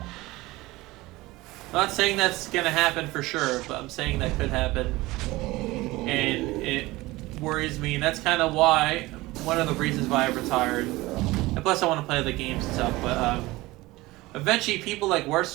I'm not saying that's gonna happen for sure, but I'm saying that could happen, and it worries me. And that's kind of why, one of the reasons why I retired. And plus, I want to play other games and stuff. But eventually, people like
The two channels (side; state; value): left; quieter; 19.9 dB